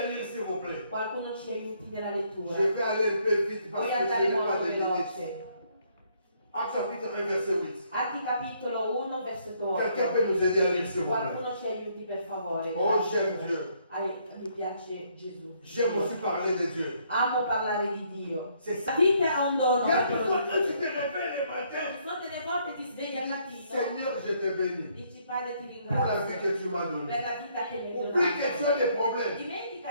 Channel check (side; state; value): both; inverted; correlation -0.69